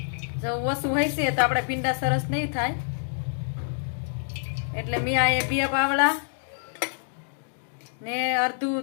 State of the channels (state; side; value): silent; right; digital silence